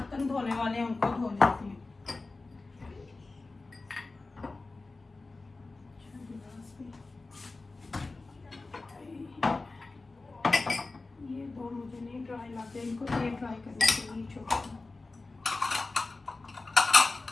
धोने वाले हैं उनको धो लेती हूँ। ये दो मुझे नहीं ड्राई लगते, इनको ये ड्राई करने के लिए छोड़।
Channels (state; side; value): quieter; right; 3.5 dB